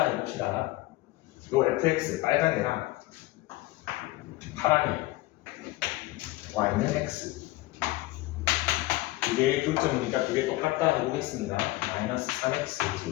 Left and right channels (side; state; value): right; quieter; 19.2 dB